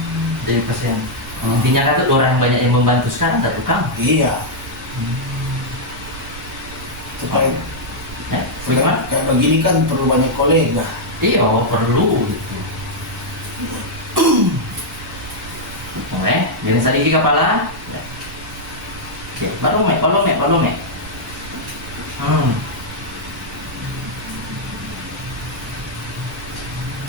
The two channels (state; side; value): noise; right; rumble, 15 dB below the sound